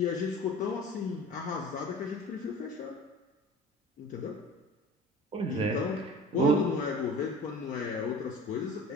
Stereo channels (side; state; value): both; normal; correlation 0.40